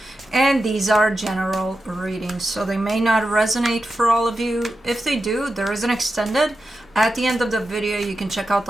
And these are general readings, so they may not resonate for all of you. If they do, there is an extended. At the end of the video, you can check out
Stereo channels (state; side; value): normal; both; correlation 0.90